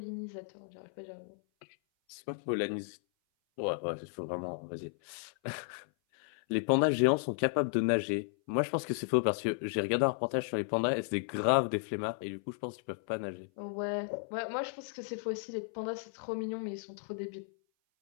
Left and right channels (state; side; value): silent; right; 55 dB below the other